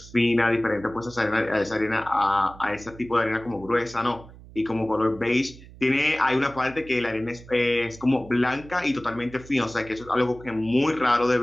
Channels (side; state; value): right; noise; hum, 19 dB below the sound